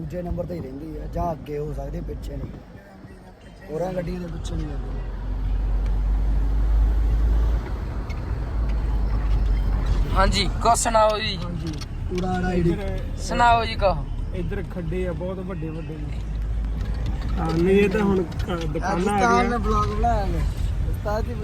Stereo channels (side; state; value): both; identical; correlation 1.00